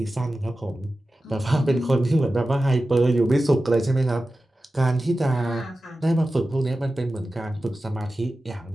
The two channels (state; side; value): normal; both; correlation 0.94